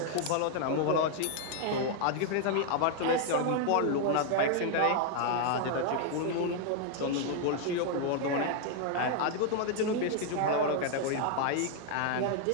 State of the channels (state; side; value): different; both; correlation 0.00